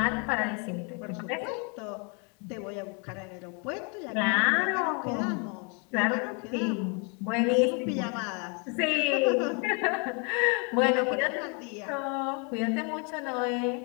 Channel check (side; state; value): right; quieter; 35.3 dB